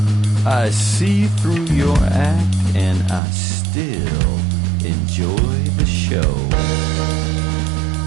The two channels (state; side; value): drops out; left; at 3.2 s